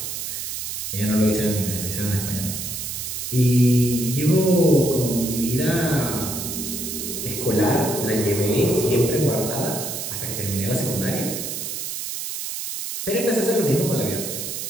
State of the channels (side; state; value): right; noise; hiss, 5 dB below the sound